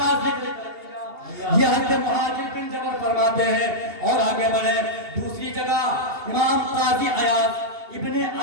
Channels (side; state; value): left; late; 2.8 ms